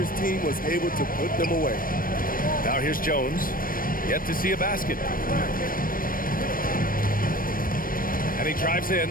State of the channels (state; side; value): late; right; 0.41 ms